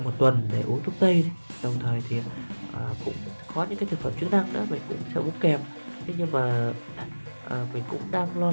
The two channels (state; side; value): inverted; both; correlation -1.00